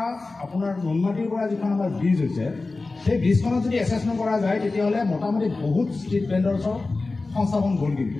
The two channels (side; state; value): right; quieter; 3.5 dB